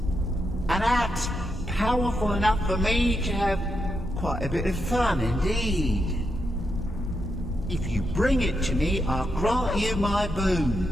An axe powerful enough for me to have quite a bit of fun indeed. If you bring it to me, I'll grant you my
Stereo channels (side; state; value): both; normal; correlation 0.83